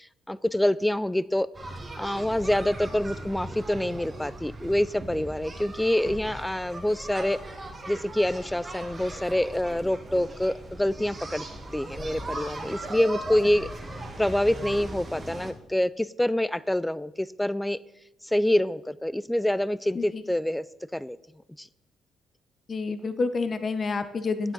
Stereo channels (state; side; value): normal; both; correlation 0.98